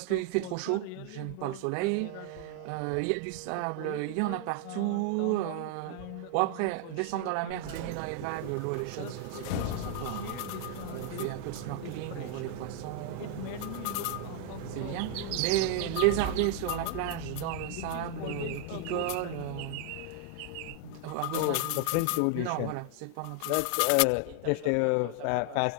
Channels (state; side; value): different; both; correlation 0.00